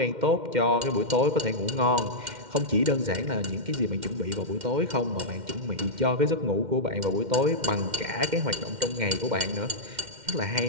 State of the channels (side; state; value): left; late; 2.1 ms